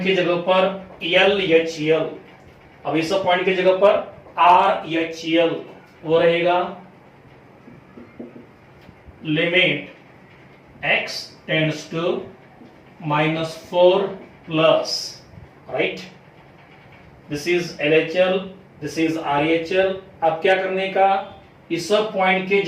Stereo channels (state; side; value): identical; both; correlation 1.00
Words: की जगह पर यल एच यल। अब इस पॉइंट की जगह पर आर एच यल, वो रहेगा limit x tends to -4 plus, right. This is LHL, this is RHL। अब क्या करने का, इस पॉइंट के